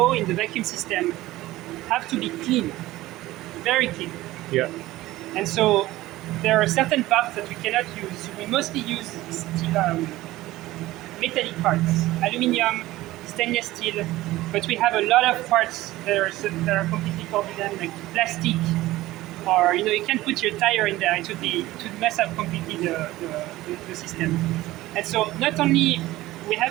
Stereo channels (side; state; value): left; quieter; 17.1 dB